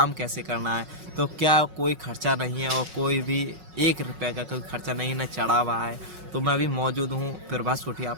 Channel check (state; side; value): late; left; 5.4 ms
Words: कैसे करना है। तो क्या कोई खर्चा नहीं है और कोई भी 1 रुपये का कोई खर्चा नहीं न चढ़ा हुआ है। तो मैं अभी मौजूद हूँ प्रभास कुटिया